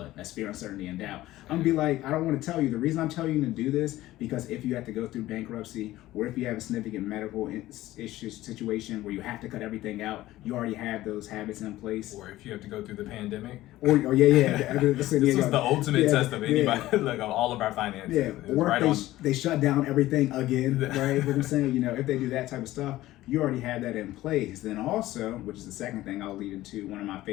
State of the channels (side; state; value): right; quieter; 16.1 dB